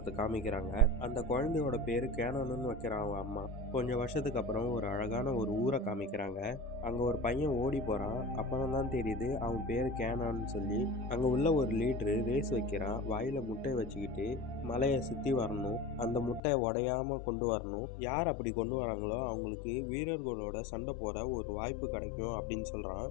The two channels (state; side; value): drops out; right; at 16.4 s